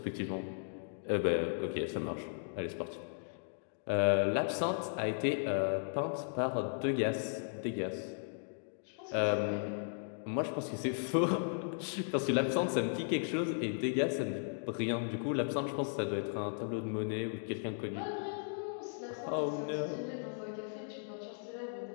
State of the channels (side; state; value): right; silent; digital silence